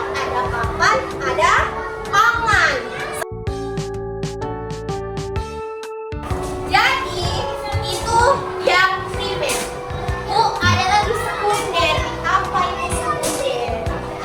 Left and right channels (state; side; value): identical; both; correlation 1.00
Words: ada papan, ada pangan. Jadi itu yang primer. Ada lagi sekunder. Apa itu sekunder?